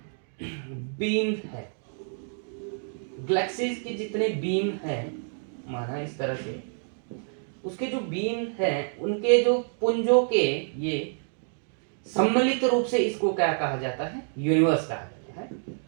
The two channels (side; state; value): left; silent; 59 dB below the other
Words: बीम है, गैलेक्सीज के जितने बीम हैं, माना इस तरह से, उसके जो बीम हैं उनके जो पुंजों के ये सम्मिलित रूप से इसको क्या कहा जाता है? यूनिवर्स कहा जाता है।